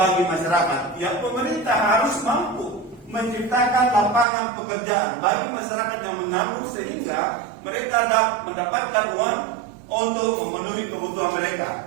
masyarakat. Ya, pemerintah harus mampu menciptakan lapangan pekerjaan bagi masyarakat yang menganggur sehingga mereka dapat mendapatkan uang untuk memenuhi kebutuhan mereka.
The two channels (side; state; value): left; drops out; at 4.2 s